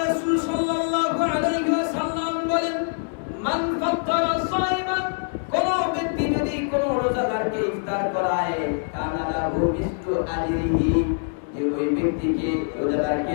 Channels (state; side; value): silent; right; digital silence